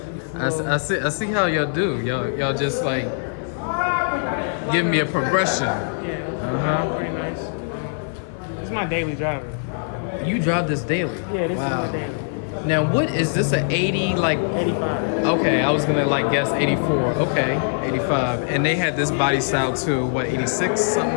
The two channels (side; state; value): right; silent; 56 dB below the other